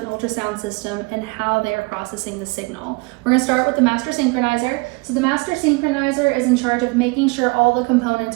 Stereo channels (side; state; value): left; quieter; 27.9 dB